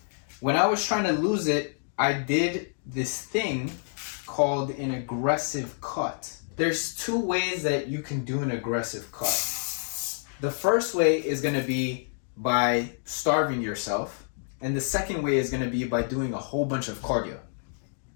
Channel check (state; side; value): silent; right; digital silence